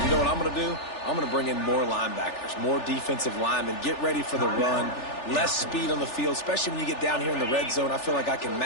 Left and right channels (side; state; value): right; late; 3.4 ms